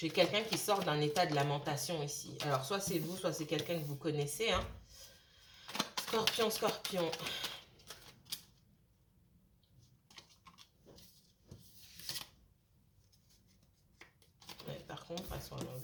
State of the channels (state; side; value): identical; both; correlation 1.00